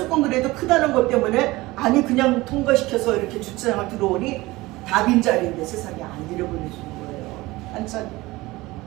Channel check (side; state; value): left; quieter; 20.2 dB